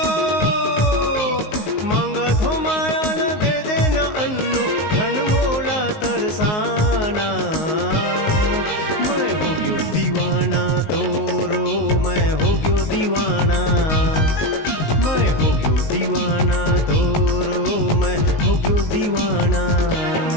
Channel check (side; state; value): right; late; 19 ms